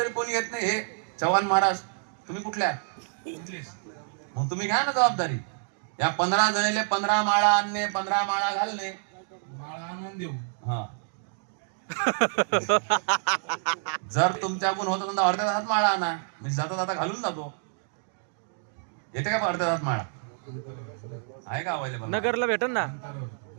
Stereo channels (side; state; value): left; silent; digital silence